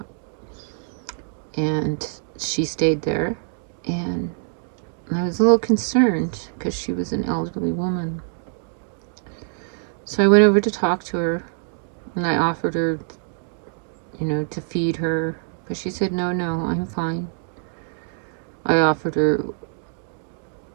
And she stayed there, and I was a little concerned because she was an elderly woman. So I went over to talk to her, and I offered her, to feed her, but she said, no, I'm fine. I offered her,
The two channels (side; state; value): left; silent; digital silence